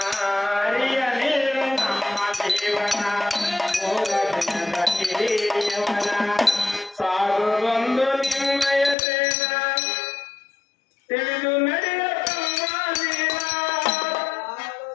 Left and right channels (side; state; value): right; drops out; at 9.0 s